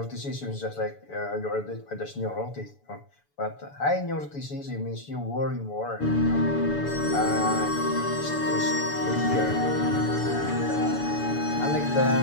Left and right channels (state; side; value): late; right; 7.0 ms